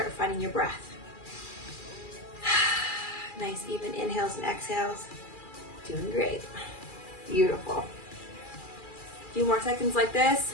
finding your breath. Nice even inhales and exhales. Doing great. Beautiful. A few more seconds like this.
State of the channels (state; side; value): late; right; 2.4 ms